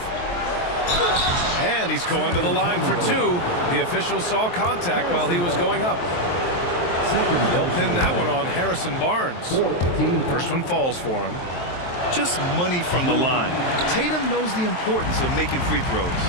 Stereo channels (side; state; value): right; late; 23 ms